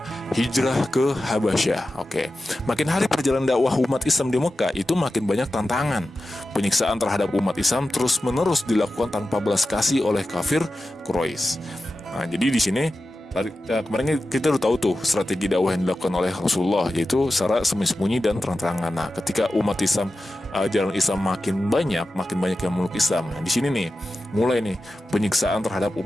hijrah ke Habasyah. Oke, makin hari perjalanan dakwah umat Islam di Mekah itu makin banyak tantangan. Penyiksaan terhadap umat Islam terus-menerus dilakukan tanpa belas kasih oleh kafir Quraisy. Nah, jadi di sini kemarin kita udah tahu tuh strategi dakwah yang dilakukan oleh Rasulullah, yaitu secara sembunyi dan terang-terangan. Nah, ketika umat Islam, jalan Islam makin banyak yang meluk Islam. Nah, di sini nih mulai nih penyiksaan terhadap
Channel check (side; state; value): both; normal; correlation 0.93